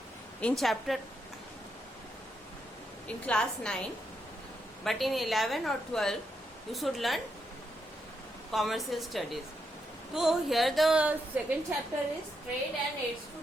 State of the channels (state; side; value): normal; both; correlation 0.81